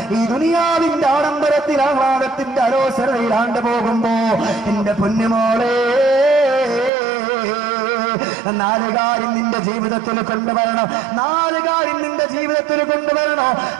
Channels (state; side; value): drops out; left; at 6.9 s